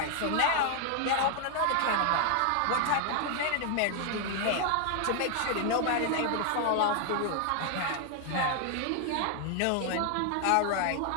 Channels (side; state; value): both; different; correlation 0.00